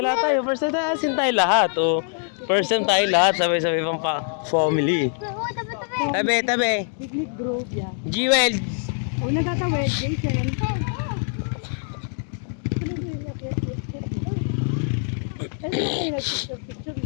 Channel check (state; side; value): silent; right; 61 dB below the other